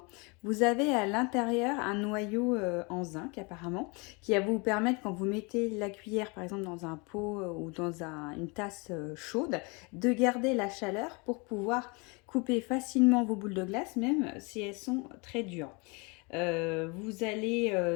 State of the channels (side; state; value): right; quieter; 29.9 dB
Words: Vous avez à l'intérieur un noyau en zinc apparemment qui va vous permettre, quand vous mettez la cuillère par exemple dans un pot ou dans une tasse chaude, de garder la chaleur pour pouvoir couper facilement vos boules de glace même si elles sont très dures. Vous